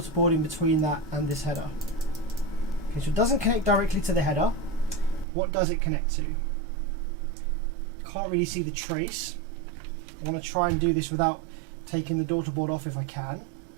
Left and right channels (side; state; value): left; drops out; at 5.2 s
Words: board in between that and this header? Okay, so it doesn't connect directly to the header. What does it connect to? Can't really see the trace. I want to try and do this without taking the daughter board off if I can.